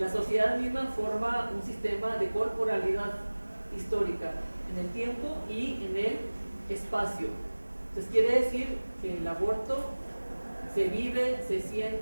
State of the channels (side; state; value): both; inverted; correlation -1.00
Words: sociedad misma forma un sistema de corporalidad histórica en el tiempo y en el espacio. Entonces quiere decir que el aborto se vive, se